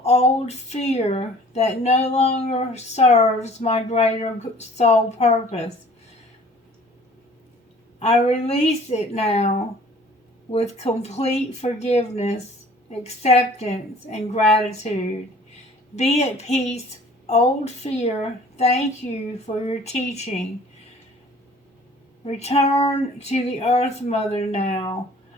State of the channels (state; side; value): normal; both; correlation 0.51